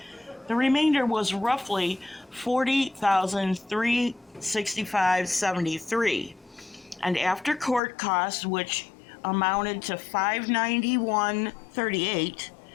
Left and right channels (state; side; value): drops out; right; at 7.8 s